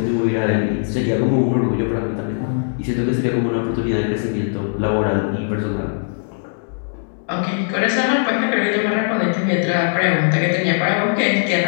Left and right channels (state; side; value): silent; right; digital silence